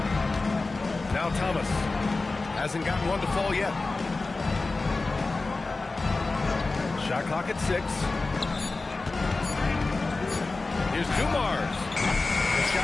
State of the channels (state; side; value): quieter; right; 3.5 dB